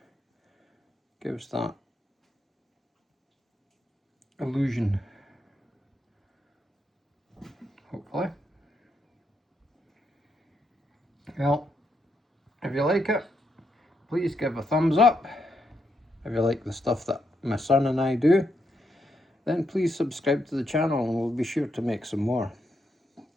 gives that illusion, hopefully. Well, if you like it, please give a thumbs up. If you like the stuff that my son and I do, then please subscribe to the channel and we'll be sure to make some more.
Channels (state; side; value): normal; both; correlation 0.80